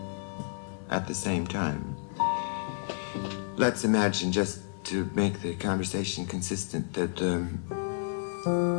at the same time? Let's imagine, just to make the conversation consistent, that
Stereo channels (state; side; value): silent; right; digital silence